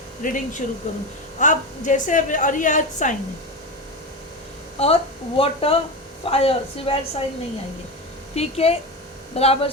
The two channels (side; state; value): both; normal; correlation 0.20